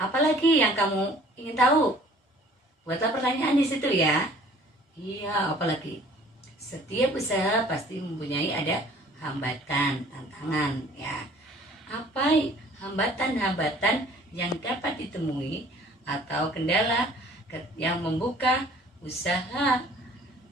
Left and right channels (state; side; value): normal; both; correlation 0.53